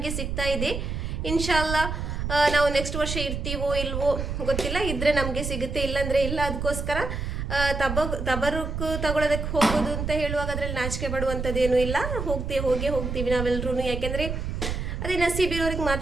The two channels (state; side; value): noise; right; rumble, 4 dB below the sound